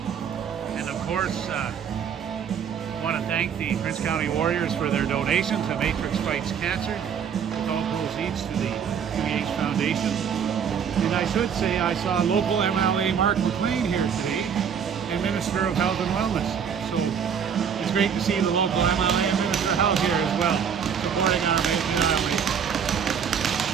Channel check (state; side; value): quieter; left; 7.5 dB